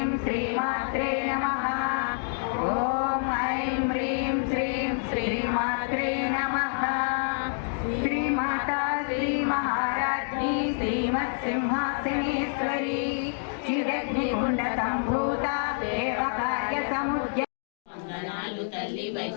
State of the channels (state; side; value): silent; right; digital silence